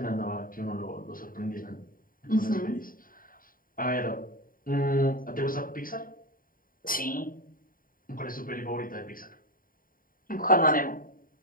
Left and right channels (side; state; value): right; late; 0.41 ms